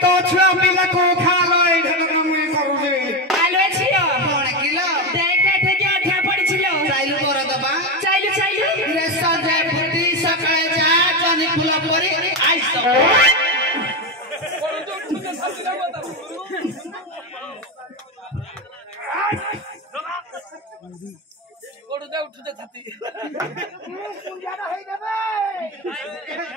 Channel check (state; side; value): normal; both; correlation 0.13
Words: तो छुआ पिला को खा लाई मुई करू जे आलो छियो कोन किलो देखा थे क्या ठा पड़ी छिलो चाइलु कर दबा चाइलु रे सजे फुटी सकाळे जा जनी फुल परी आइस कोडु दे उठते छाती